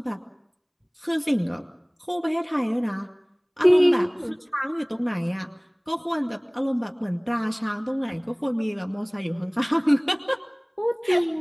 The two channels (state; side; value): identical; both; correlation 1.00